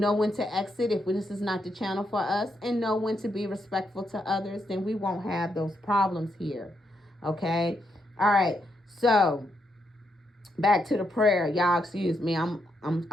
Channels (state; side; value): normal; both; correlation 0.80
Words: when to exit if this is not the channel for us. And know when to be respectful to others. Then we won't have those problems here. Okay? All right. So, back to the prayer. Y'all excuse me. I'm